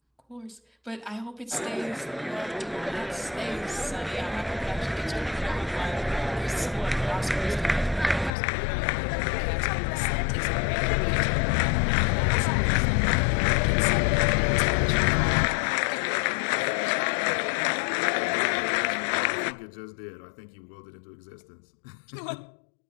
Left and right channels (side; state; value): right; drops out; at 8.3 s